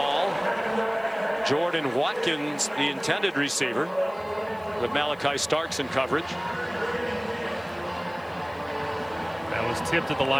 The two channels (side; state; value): left; noise; hiss, 28 dB below the sound